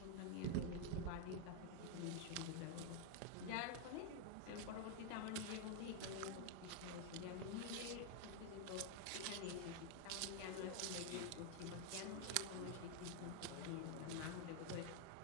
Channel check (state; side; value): different; both; correlation 0.00